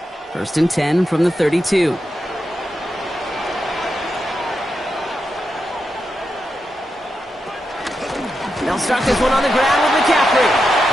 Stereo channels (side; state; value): both; normal; correlation 0.87